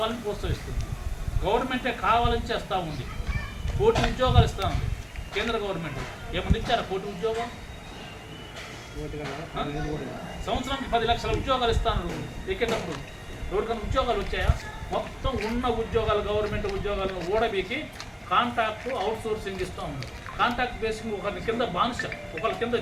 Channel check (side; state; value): both; identical; correlation 1.00